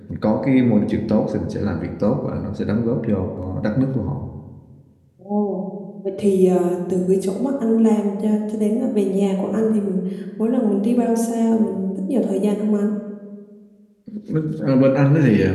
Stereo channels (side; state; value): both; identical; correlation 1.00